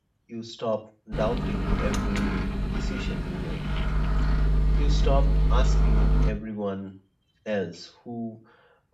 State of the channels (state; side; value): identical; both; correlation 1.00